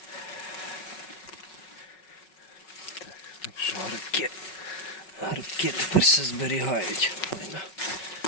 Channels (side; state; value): right; late; 5.4 ms